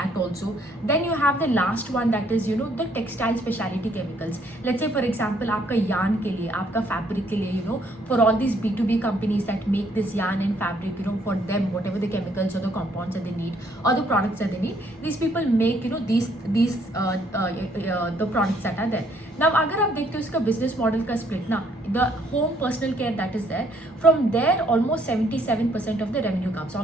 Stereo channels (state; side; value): normal; both; correlation 0.67